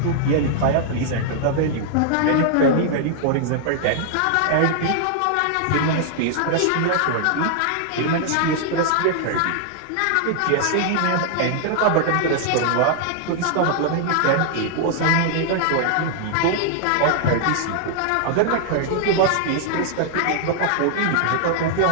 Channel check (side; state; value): both; different; correlation -0.01